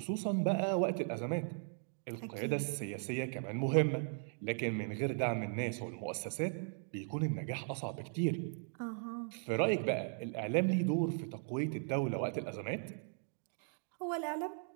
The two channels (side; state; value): left; silent; 53 dB below the other